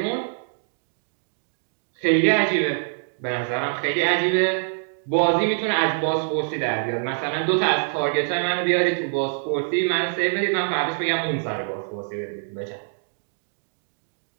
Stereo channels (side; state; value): left; silent; digital silence